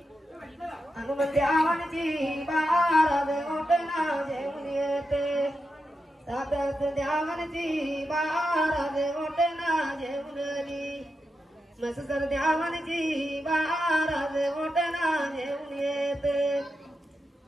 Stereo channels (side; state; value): both; normal; correlation 0.88